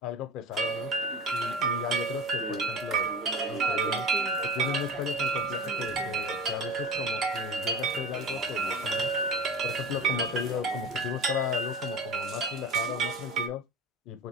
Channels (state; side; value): normal; both; correlation 0.32